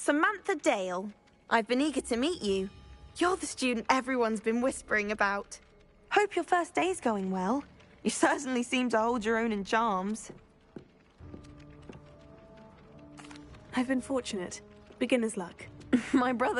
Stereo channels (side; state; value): both; identical; correlation 1.00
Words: Dale. I've been eager to meet you. You're the student everyone's been whispering about. Hope your first day's going well. You certainly seem to hold your own in charms. I've been fortunate. Beginner's luck. My